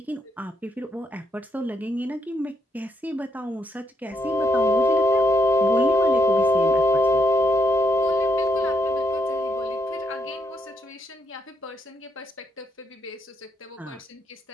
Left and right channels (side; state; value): both; normal; correlation 0.77